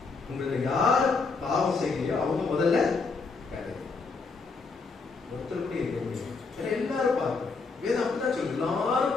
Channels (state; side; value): quieter; right; 4.4 dB